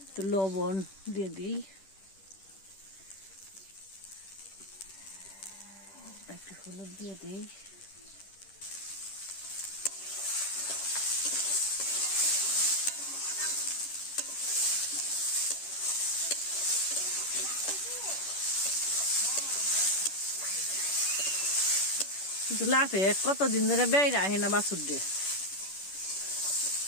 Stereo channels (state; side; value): late; right; 10 ms